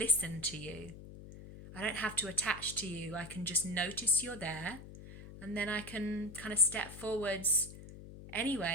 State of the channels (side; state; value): left; noise; hum, 15 dB below the sound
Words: to you. I don't have to attach to you. I can just notice you're there, and then I can kind of step forwards